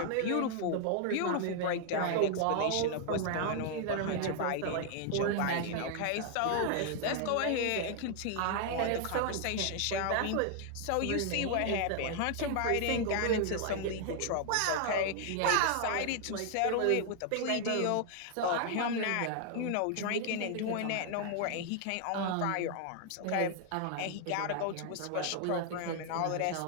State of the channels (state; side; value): different; both; correlation 0.00